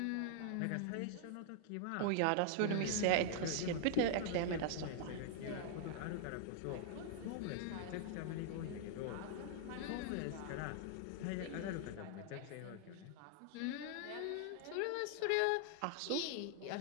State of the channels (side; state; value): both; different; correlation 0.00